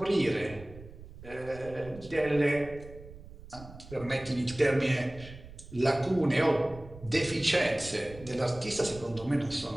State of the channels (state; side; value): noise; right; rumble, 17 dB below the sound